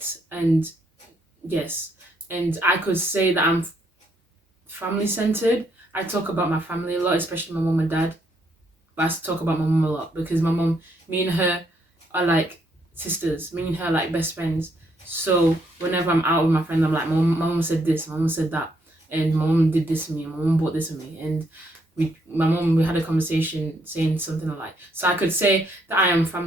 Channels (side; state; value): both; normal; correlation 0.73